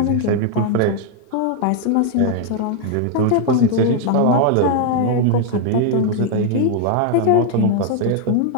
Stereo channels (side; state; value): both; different; correlation 0.00